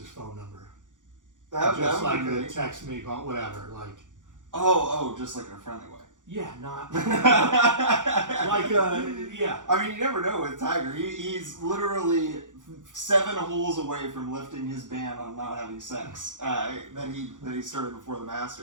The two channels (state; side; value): late; left; 0.87 ms